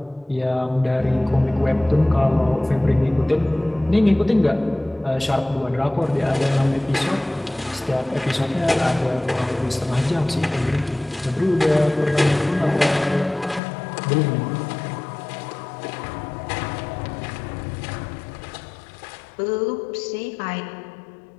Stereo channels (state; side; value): drops out; right; at 13.6 s